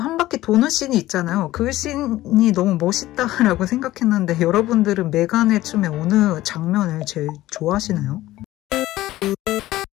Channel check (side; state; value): right; quieter; 15.9 dB